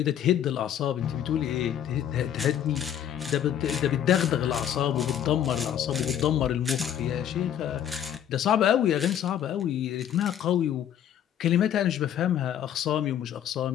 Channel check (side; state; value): right; quieter; 10.1 dB